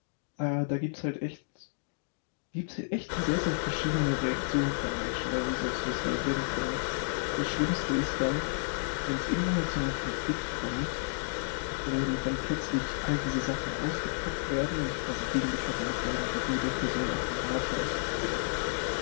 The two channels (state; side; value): silent; right; digital silence